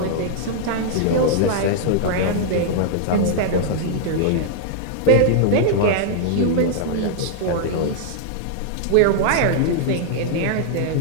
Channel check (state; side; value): different; both; correlation -0.01